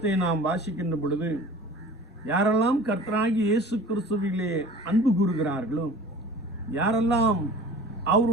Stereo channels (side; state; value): both; normal; correlation 0.43